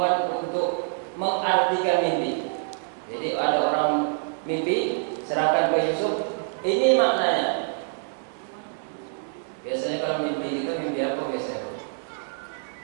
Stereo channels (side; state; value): left; silent; digital silence